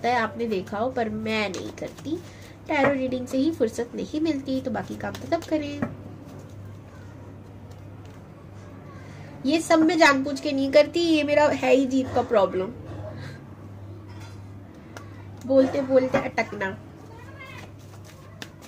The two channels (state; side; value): identical; both; correlation 1.00